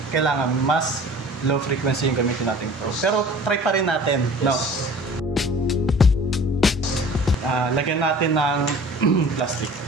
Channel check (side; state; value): both; normal; correlation 0.45